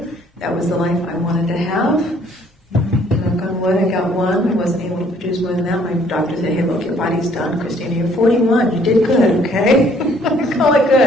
That was the life I wanted to have. Knock on wood, I got one. I wasn't able to produce more than that. My doctor said, hey, look, your body's done. Christina, you're 41. You did good, okay? I call it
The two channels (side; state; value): both; normal; correlation 0.62